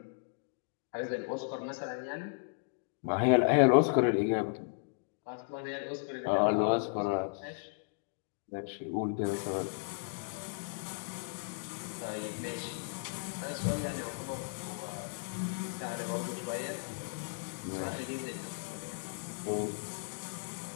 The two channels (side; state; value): right; silent; digital silence